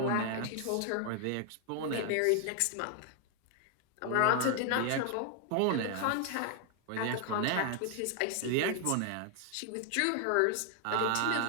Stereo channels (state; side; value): different; both; correlation 0.00